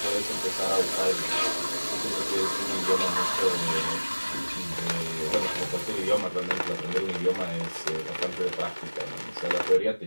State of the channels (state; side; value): inverted; both; correlation -1.00